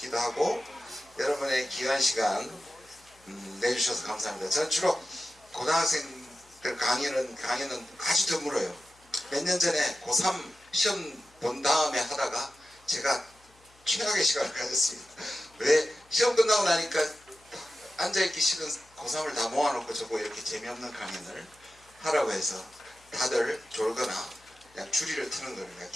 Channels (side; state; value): left; noise; hum, 30 dB below the sound